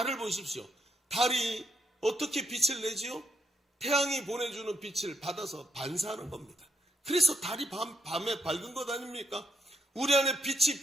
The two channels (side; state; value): both; normal; correlation 0.77